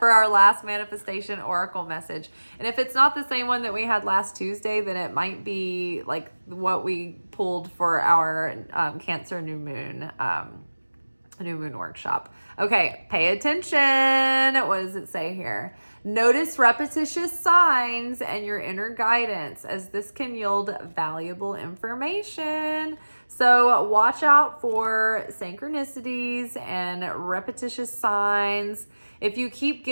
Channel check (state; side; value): inverted; both; correlation -1.00